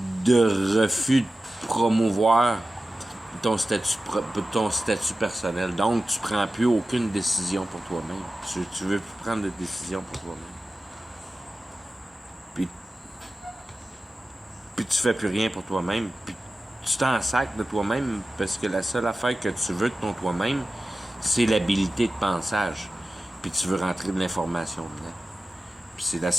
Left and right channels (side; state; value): both; normal; correlation 0.95